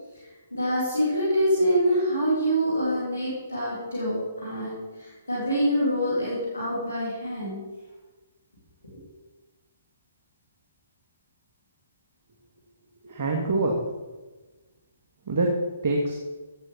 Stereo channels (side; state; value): both; inverted; correlation -0.67